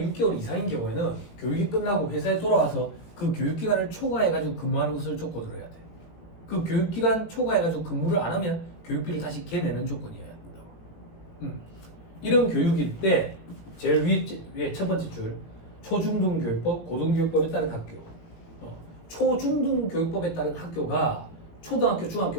이상인 경우에는 교육이 끝나고 회사에 돌아와서 그 교육기간을 초과해 가지고 근무하는 것을 조건으로 해야 돼. 그 교육기간 초과해 가지고 근무를 안 하면 교육비를 다시 개내는 조건이어야 된다고. 이런 교육일 때 제일 위에 첫 번째 줄 초중등교육법, 고등교육법에 따른 학교. 초중등교육법에 따른 학교가 초등학교,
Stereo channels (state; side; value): late; right; 18 ms